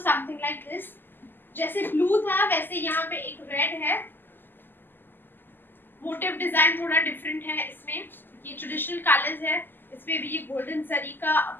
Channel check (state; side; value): late; right; 0.093 ms